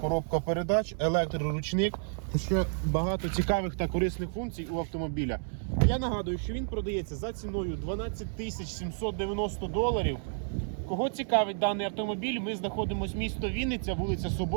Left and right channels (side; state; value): left; silent; digital silence